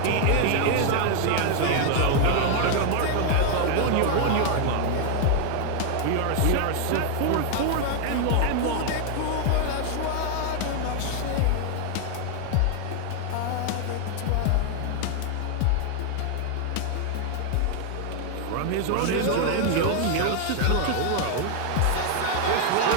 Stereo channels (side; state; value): both; different; correlation 0.00